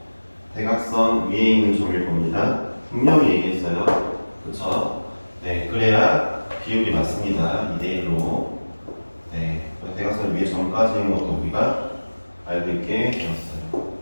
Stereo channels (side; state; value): both; inverted; correlation -1.00